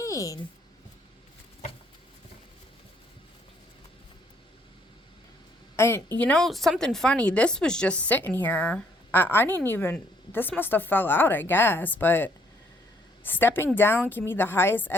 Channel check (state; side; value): normal; both; correlation 0.67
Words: And you know, something funny, this was just sitting here. I didn't even, this must have fell out, I guess, but stepping down can be the highest